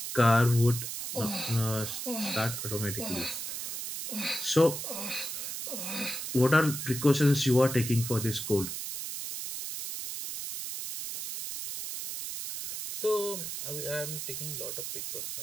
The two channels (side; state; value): right; noise; hiss, 5 dB below the sound